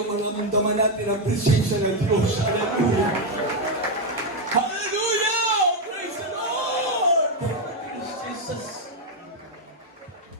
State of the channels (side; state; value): both; normal; correlation 0.04